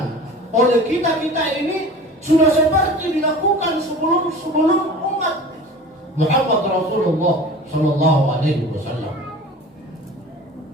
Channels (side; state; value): both; normal; correlation 0.39